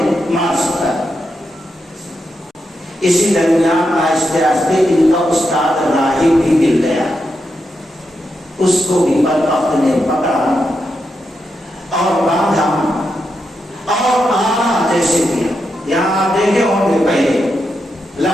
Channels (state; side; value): normal; both; correlation 0.85